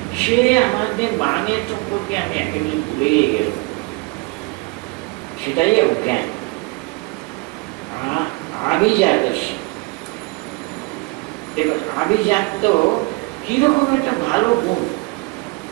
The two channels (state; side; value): quieter; left; 26.5 dB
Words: সে আমাদের মানের সম্পর্কে আমি একেবারে ভুলে গেল, সেটাই অজ্ঞান। আভিজাত, দেখুন আভিজাত কিরকম একটা ভালো গুণ।